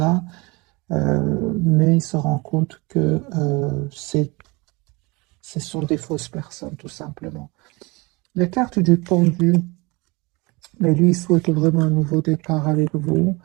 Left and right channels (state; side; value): quieter; left; 25.6 dB